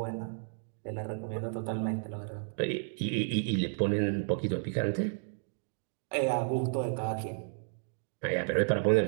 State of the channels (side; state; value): left; silent; digital silence